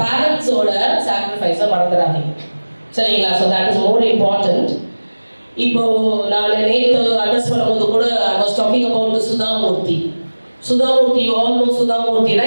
பேரண்ட்ஸோட சாக்ரிஃபைஸை மறந்துடாதீங்க, சரிங்களா? So that is more important. இப்போ நான் நேற்று அட்ரஸ் பண்ணும்போது கூட I was talking about Sudha Murthy. Sudha Murthy, you all know Sudha Murthy,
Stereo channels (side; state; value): both; inverted; correlation -1.00